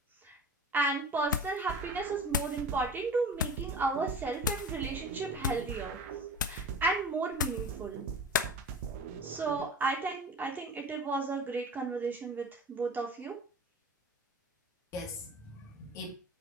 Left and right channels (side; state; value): both; normal; correlation 0.36